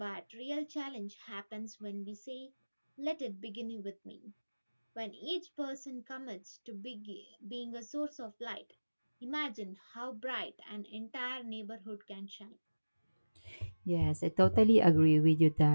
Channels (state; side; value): inverted; both; correlation -1.00